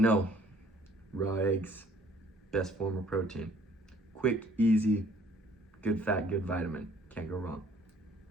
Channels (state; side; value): normal; both; correlation 0.59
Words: raw eggs, best form of protein. Quick, easy, good fat, good vitamin. Can't go wrong.